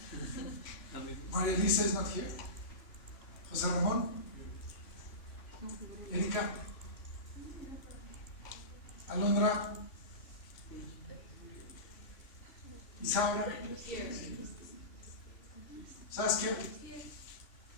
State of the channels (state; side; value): late; right; 3.5 ms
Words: Maria Elisa is not here. Jose Ramón? Erika? Alondra? Isaura? Saskia?